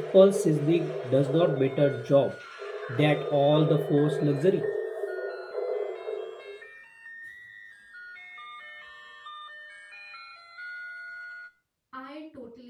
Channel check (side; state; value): both; identical; correlation 1.00